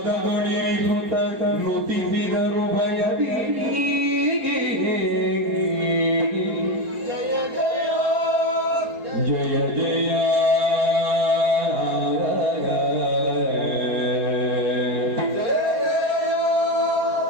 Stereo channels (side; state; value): left; late; 4.3 ms